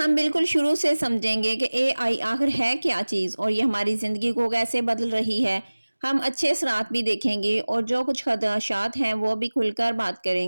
बिल्कुल शुरू से समझेंगे कि एआई आखिर है क्या चीज़ और ये हमारी ज़िंदगी को कैसे बदल रही है। हम अच्छे असरात भी देखेंगे और जो कुछ खदशात हैं वो भी खुलकर बात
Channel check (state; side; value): inverted; both; correlation -1.00